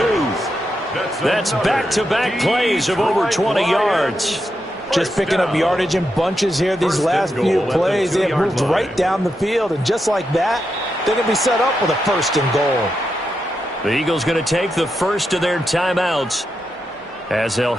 That's back-to-back plays of over 20 yards. Just picking up yardage in bunches here these last few plays. They have moved right down the field, and just like that, they're going to be set up with a 1st and goal. The Eagles going to take the first of their timeouts as they'll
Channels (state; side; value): normal; both; correlation 0.85